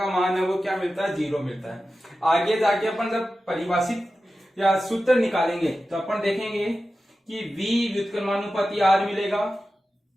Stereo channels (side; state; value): both; normal; correlation 0.93